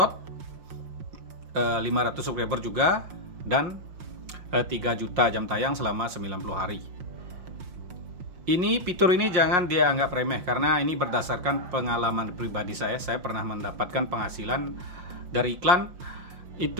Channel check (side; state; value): left; late; 5.6 ms